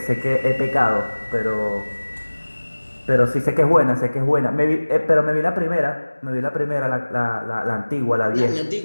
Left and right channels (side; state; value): both; inverted; correlation -1.00